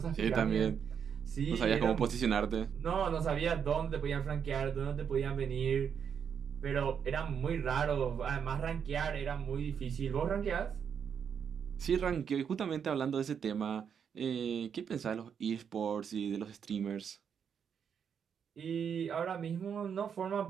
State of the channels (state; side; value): quieter; left; 7.4 dB